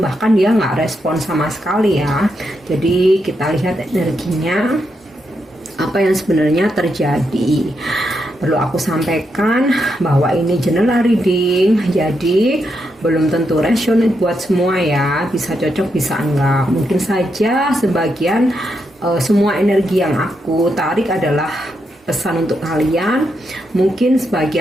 dia nggak respon sama sekali ya. Jadi kita lihat energinya apa yang sebenarnya terjadi. Perlu aku sampaikan bahwa ini general reading, jadi belum tentu resonate buat semua ya. Bisa cocok, bisa enggak. Mungkin saja sebagian semua energi yang aku tarik adalah pesan untuk kalian. Mungkin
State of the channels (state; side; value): normal; both; correlation 0.82